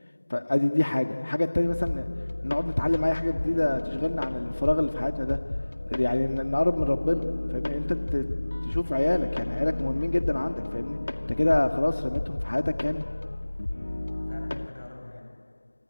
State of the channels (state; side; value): inverted; both; correlation -1.00